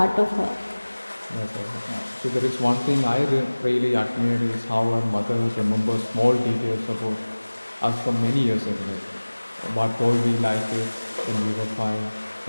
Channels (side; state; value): both; inverted; correlation -1.00